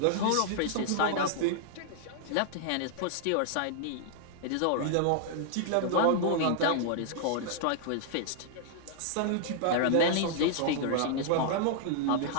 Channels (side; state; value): both; different; correlation -0.01